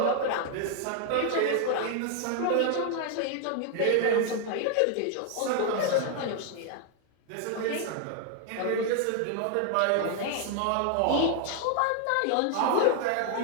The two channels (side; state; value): both; different; correlation 0.00